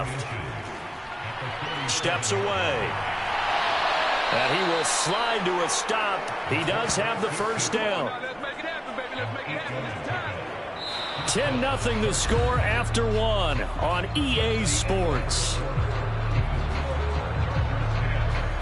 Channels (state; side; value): identical; both; correlation 1.00